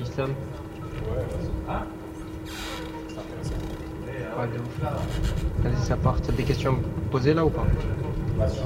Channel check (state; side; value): identical; both; correlation 1.00